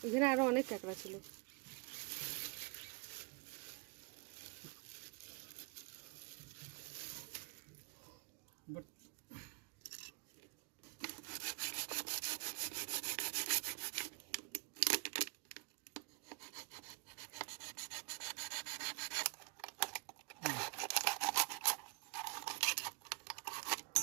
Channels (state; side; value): quieter; left; 29.9 dB